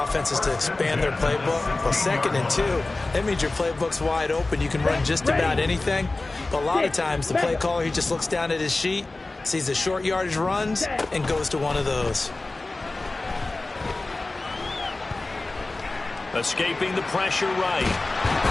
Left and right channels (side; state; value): right; quieter; 3.2 dB